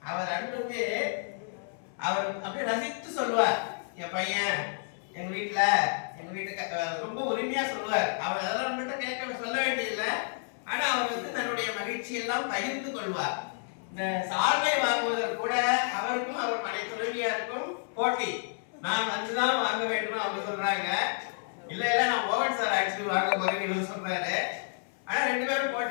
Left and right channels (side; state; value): right; silent; 58 dB below the other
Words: அவர் அன்புக்கு அவர் அப்படியே ரசித்து சொல்லுவார். என் பையன் எங்க வீட்டுக்கு ரொம்ப உரிமையா சொல்லுவார். அவர் அதெல்லாம் நம்மகிட்ட கேட்க சொல்ல வேண்டியதில்லை. ஆனா அவருக்கு தன்னுடைய மகிழ்ச்சி எல்லாம் பகிர்ந்து கொள்வார். இந்த சால்வை வாங்குவதற்கு கூட அவருக்கும் அவர் மனை துணைவியாருக்கும் போட்டி. நான் வந்துதான் வாங்க வேண்டும் அவங்க சொல்றாங்க. இல்ல நான் மோகன் சார் ஆக்சுவலி வாங்க போறேன்னு இவர் சொல்றாரு. ஆனா ரெண்டு பேரும்